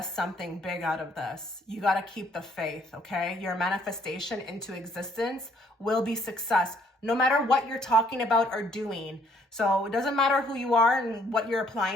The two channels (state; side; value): normal; both; correlation 0.65